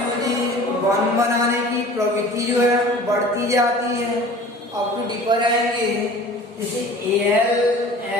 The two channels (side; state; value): both; normal; correlation 0.44